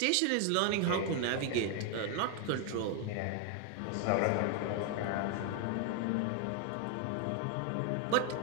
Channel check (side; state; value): both; different; correlation 0.01